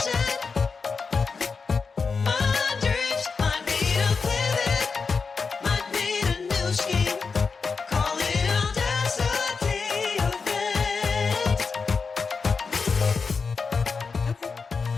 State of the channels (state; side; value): quieter; right; 5.0 dB